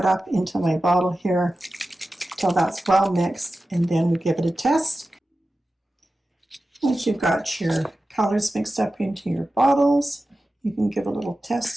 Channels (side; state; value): both; normal; correlation 0.94